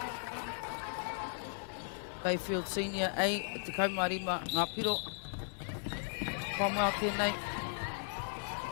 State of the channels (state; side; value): silent; right; 53 dB below the other